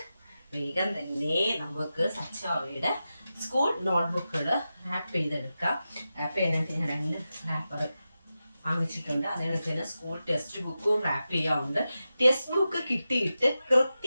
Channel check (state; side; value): inverted; both; correlation -0.92